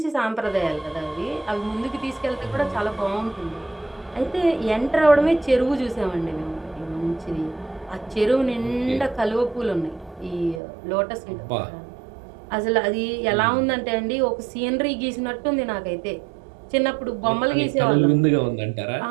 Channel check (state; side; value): drops out; left; at 10.6 s